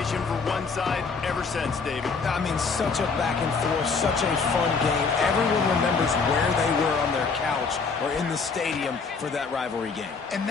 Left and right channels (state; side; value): quieter; right; 4.8 dB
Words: for one side ever since, David. I mean, such a back and forth, such a fun game. Everyone remembers where they were on their couch or in the stadium for that rivalry game. And